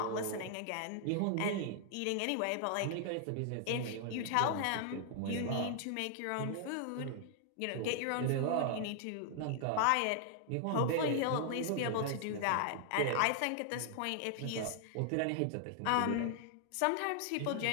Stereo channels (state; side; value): different; both; correlation 0.00